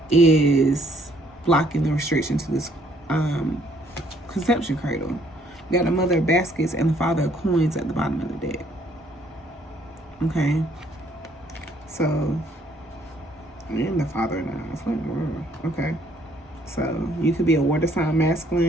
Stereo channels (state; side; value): normal; both; correlation 0.65